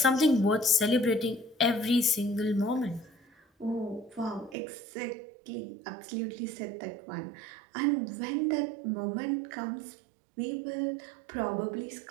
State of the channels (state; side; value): drops out; left; at 4.5 s